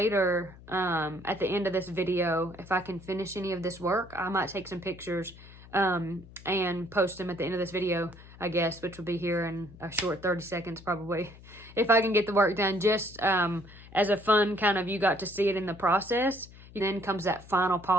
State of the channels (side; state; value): left; noise; hum, 20 dB below the sound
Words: at the end of this video, if I can finish any of this work, I might take some pictures and post them at the end of this video, I guess, which will be here in a short 30 seconds probably. If I can get the work done, just as a fun kind of, you got to see it in the process. And then comes that final